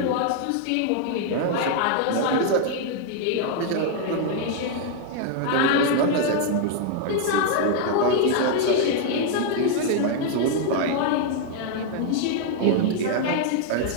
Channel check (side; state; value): both; different; correlation 0.00